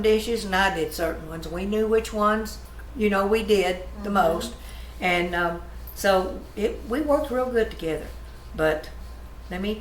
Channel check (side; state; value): both; identical; correlation 1.00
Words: dishes and I did certain ones. We knew which ones, we did the most. And so we worked real good together. But let me